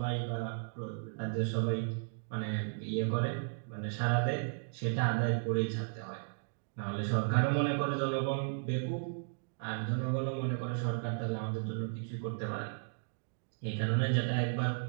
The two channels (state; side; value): silent; left; digital silence